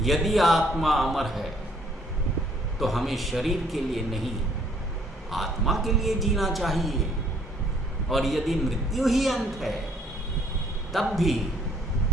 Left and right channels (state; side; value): normal; both; correlation 0.63